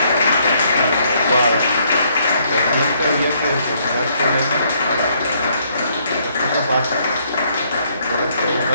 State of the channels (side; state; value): both; inverted; correlation -0.69